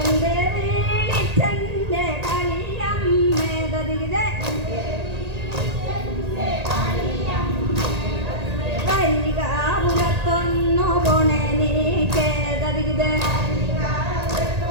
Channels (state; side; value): late; left; 1.8 ms